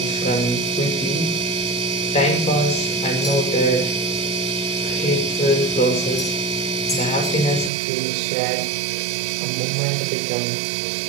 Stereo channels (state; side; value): drops out; left; at 7.7 s